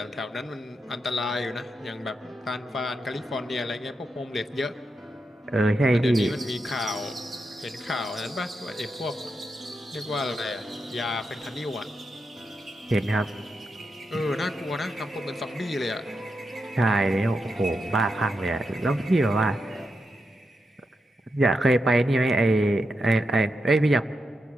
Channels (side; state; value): both; normal; correlation 0.86